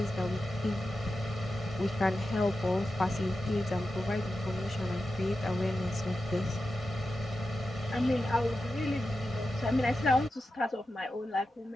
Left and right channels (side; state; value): both; normal; correlation 0.91